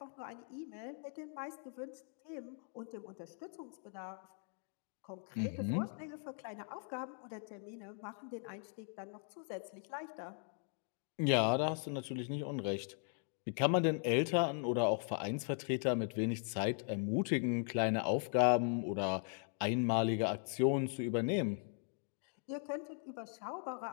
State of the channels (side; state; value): right; silent; 52 dB below the other